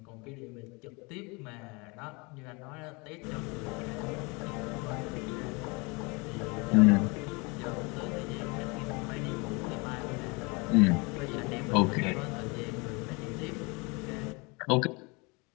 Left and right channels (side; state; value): right; quieter; 28.3 dB